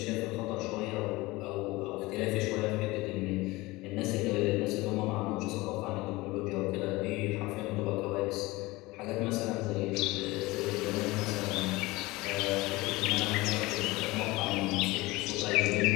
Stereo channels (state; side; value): quieter; right; 21.1 dB